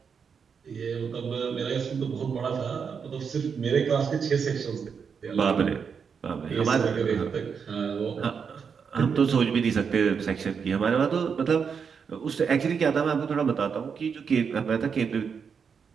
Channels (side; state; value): left; quieter; 6.4 dB